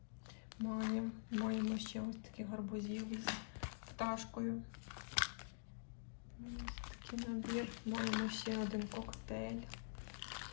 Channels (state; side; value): silent; right; digital silence